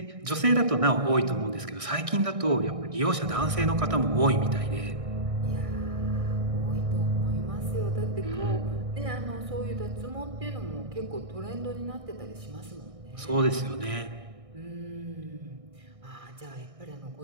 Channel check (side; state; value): left; late; 1.6 ms